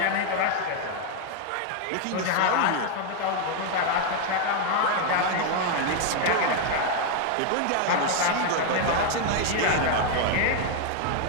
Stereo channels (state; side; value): different; both; correlation 0.01